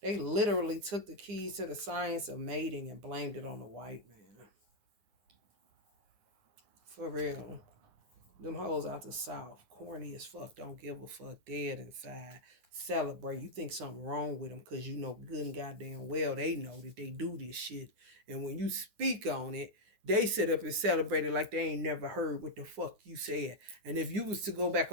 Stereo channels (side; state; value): left; late; 9.8 ms